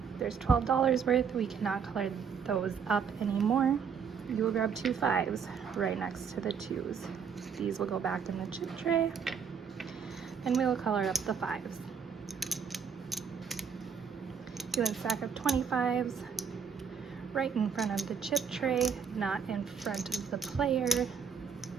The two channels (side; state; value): left; quieter; 6.6 dB